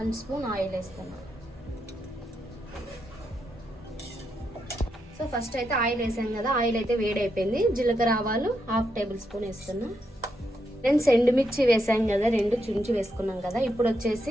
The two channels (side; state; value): both; normal; correlation 0.82